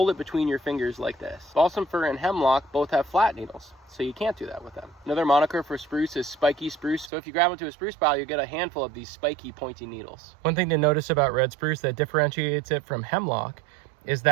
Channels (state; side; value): drops out; left; at 7.1 s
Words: it between your fingers like this. Balsam fir and hemlock both have flat needles, so you can't do that with them. Another moniker for spruce is spiky spruce. So if you grab into a spruce pile, you get a handful of these spiky, pointy needles. One thing to notice about red spruce that differentiates it from hemlock is